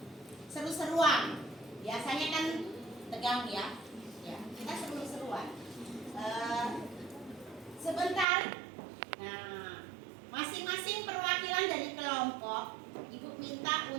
seru-seruan. Biasanya kan tegang ya. Ya, kita seru-seruan. Sebentar. Nah, masing-masing perwakilan dari kelompok, ibu minta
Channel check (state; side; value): drops out; left; at 8.2 s